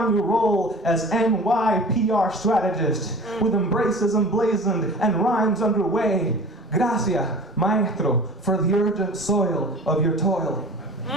your role as NYPR strategist, with embraces emblazoned and rhymes underway. Gracias, maestro, for the urgent soil of your toil.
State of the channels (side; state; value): both; normal; correlation 0.41